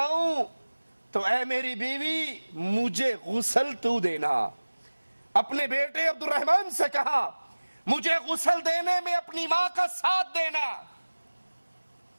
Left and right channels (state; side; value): inverted; both; correlation -1.00